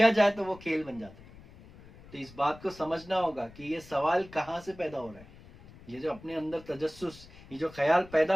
جائے تو وہ کھیل بن جاتا ہے. تو اس بات کو سمجھنا ہوگا کہ یہ سوال کہاں سے پیدا ہو رہا ہے, یہ جو اپنے اندر تجسس, یہ جو خیال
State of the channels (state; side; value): noise; left; rumble, 21 dB below the sound